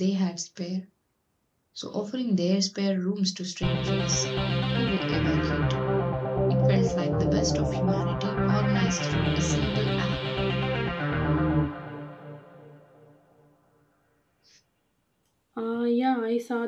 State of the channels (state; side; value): identical; both; correlation 1.00